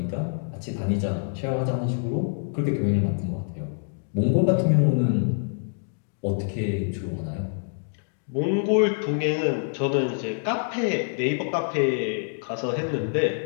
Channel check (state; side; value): silent; right; digital silence